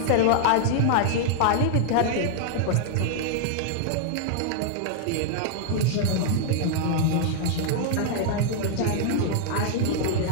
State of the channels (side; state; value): both; different; correlation -0.01